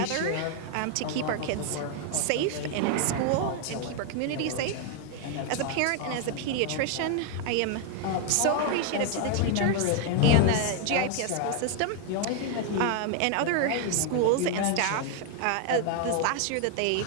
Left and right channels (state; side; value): different; both; correlation 0.00